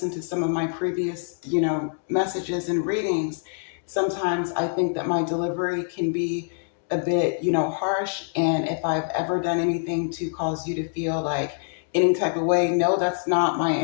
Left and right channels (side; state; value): right; silent; digital silence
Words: to some of my previous, messages and readings, sometimes I think that my delivery can be a bit, harsh. And if I've ever done anything to cause you to feel like any type of way, no, that's not my